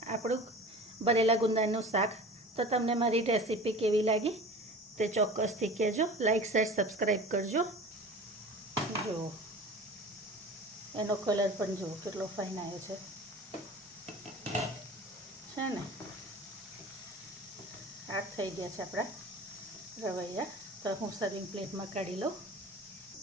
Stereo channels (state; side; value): normal; both; correlation 0.38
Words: આપણું ભરેલા ગુંદાનું શાક. તો તમને મારી રેસીપી કેવી લાગી તે ચોક્કસથી કહેજો. લાઈક શેર સબસ્ક્રાઈબ કરજો. જુઓ એનો કલર પણ જુઓ કેટલો ફાઇન આવ્યો છે ને. આ થઈ ગયા છે આપણા રવૈયા. તો હું સર્વિંગ પ્લેટમાં કાઢી લઉં.